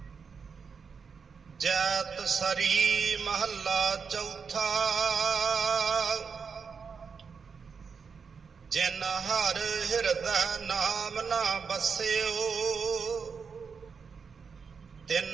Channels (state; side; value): quieter; left; 5.8 dB